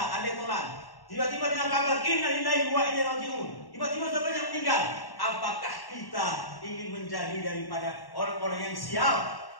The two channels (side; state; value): right; late; 1.1 ms